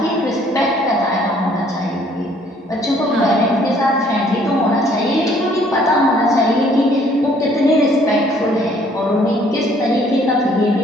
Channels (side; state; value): both; normal; correlation 0.61